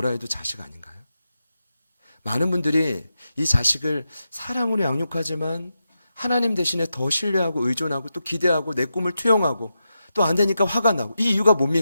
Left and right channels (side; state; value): both; inverted; correlation -0.88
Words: 해도 자식 아닌가요? 많은 분들이 이 자식을 사랑으로 양육하지만 하나님 대신에 더 신뢰하고 의존하고 또 기대하고 내 꿈을 투영하고 또 안 되니까 화가 나고 이 이유가